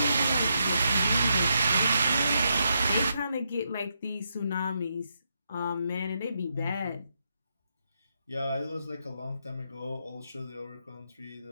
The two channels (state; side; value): inverted; both; correlation -0.81